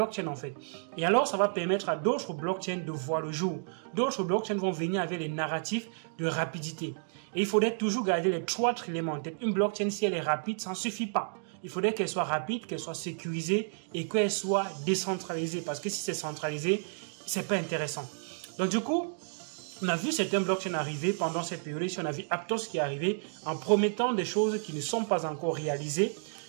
en fait. Et alors, ça va permettre à d'autres blockchains de voir le jour. D'autres blockchains vont venir avec les narratifs de rapidité. Et il faudrait toujours garder les 3 éléments en tête. Une blockchain, si elle est rapide, ça ne suffit pas. Il faudrait qu'elle soit rapide, qu'elle soit sécurisée et qu'elle soit décentralisée. Parce que si c'est centralisé, c'est pas intéressant. Donc du coup, on a vu certains blockchains arriver pendant cette période. On a vu Aptos qui est arrivé en promettant des choses qui ne sont pas encore réalisées.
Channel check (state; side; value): silent; left; digital silence